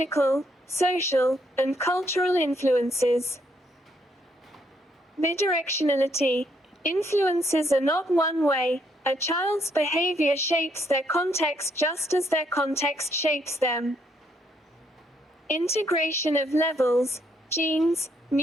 social, and cultural influences. Bidirectionality. Influences are not one way. A child's behavior shapes their context just as their context shapes them. Integration of levels, genes,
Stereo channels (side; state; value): both; normal; correlation 0.73